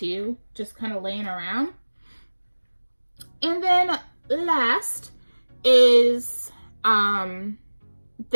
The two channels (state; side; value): inverted; both; correlation -1.00